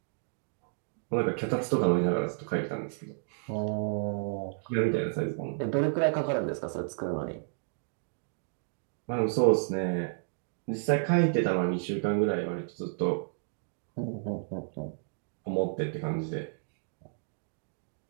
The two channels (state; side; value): silent; left; digital silence